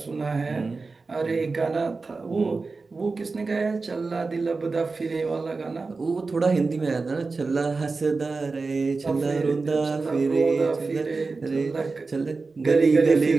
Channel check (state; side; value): quieter; left; 4.0 dB